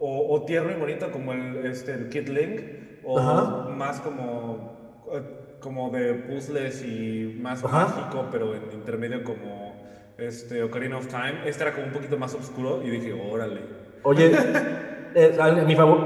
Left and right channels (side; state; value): both; identical; correlation 1.00